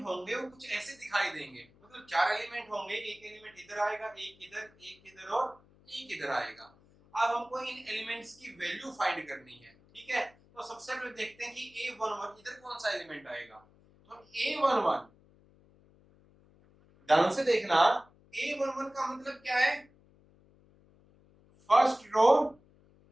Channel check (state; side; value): noise; left; hum, 29 dB below the sound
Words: होंगे वो कुछ ऐसे दिखाई देंगे, मतलब 4 एलिमेंट होंगे, एक एलिमेंट इधर आएगा, एक इधर और एक इधर आएगा। अब हमको इन एलिमेंट्स की वैल्यू फाइंड करनी है, ठीक है। तो सबसे पहले देखते हैं कि A11 इधर कौन सा एलिमेंट आएगा। तो A11 ध्यान से देखना, A11 का मतलब क्या है, first row